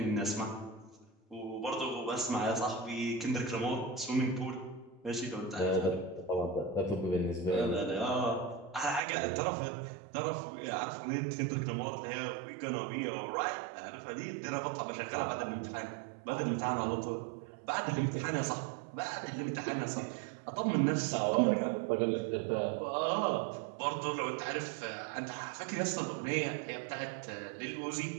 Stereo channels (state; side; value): drops out; left; at 9.0 s